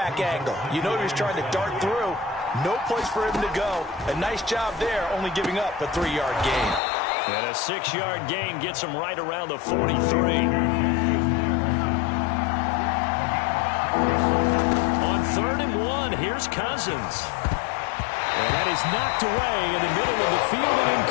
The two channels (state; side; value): drops out; right; at 6.8 s